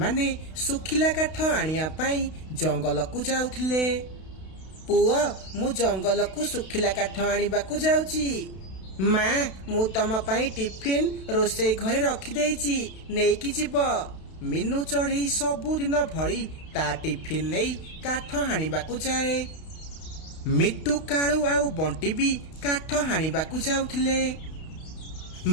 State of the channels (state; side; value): late; right; 32 ms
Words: सुखिला काठ आनिया पाई जंगल को जाउथिले। पुआ मु जंगल को सुखिला काठ आनिबाकु जाउची। माँ मु तम पाई टिफिन रोसई घरे रखी देइची, नेकी जीव। मीनू चढ़ई सबुदिन भली ता टिफिन नहीं काठ हाणिबाकु जाए। मिट्टू कालू आउ बंटी भी काठ हाणिबाकु जाउथिले।